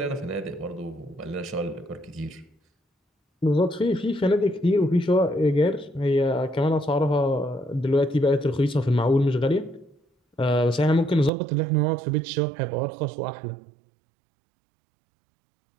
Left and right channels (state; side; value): drops out; left; at 11.3 s